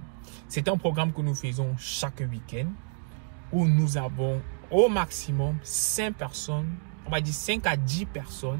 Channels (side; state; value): left; silent; 59 dB below the other